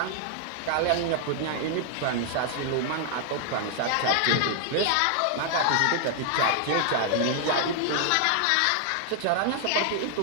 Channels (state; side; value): different; both; correlation 0.00